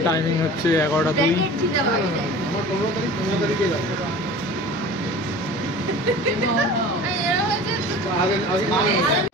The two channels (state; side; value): normal; both; correlation 0.40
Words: টাইমিং হচ্ছে 11টা 2।